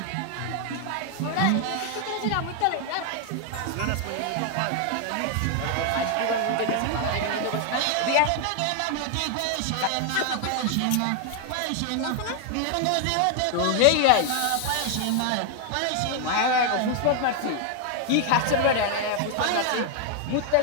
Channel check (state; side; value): different; both; correlation 0.00